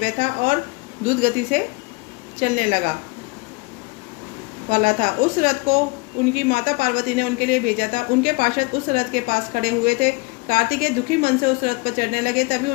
था और द्रुत गति से चलने वाला था। उस रथ को उनकी माता पार्वती ने उनके लिए भेजा था। उनके पार्षद उस रथ के पास खड़े हुए थे। कार्तिकेय दुखी मन से उस रथ पर चढ़ने लगे। तभी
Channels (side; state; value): right; quieter; 26.9 dB